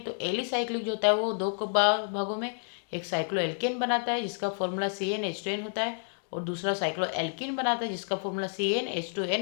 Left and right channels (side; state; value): right; silent; digital silence